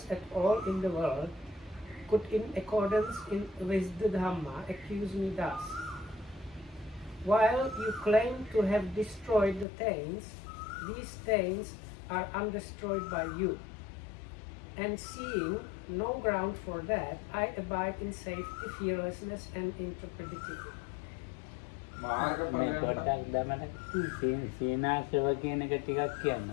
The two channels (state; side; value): drops out; right; at 9.7 s